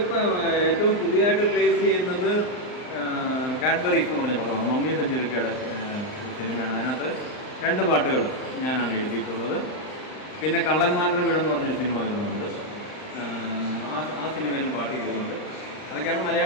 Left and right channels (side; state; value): right; late; 39 ms